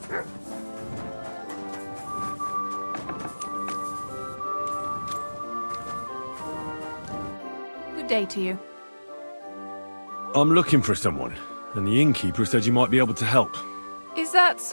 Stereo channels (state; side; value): inverted; both; correlation -1.00